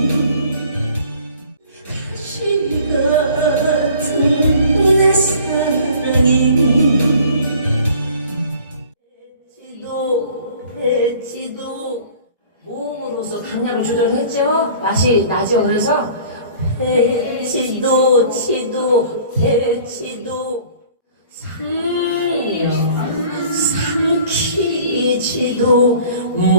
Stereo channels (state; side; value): inverted; both; correlation -0.49